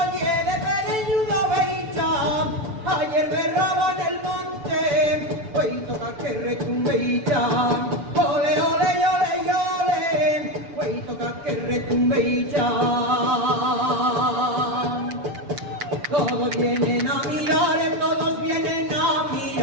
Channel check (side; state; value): left; late; 6.9 ms